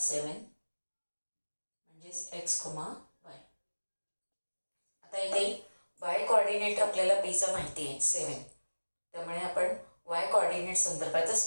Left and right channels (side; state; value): both; inverted; correlation -1.00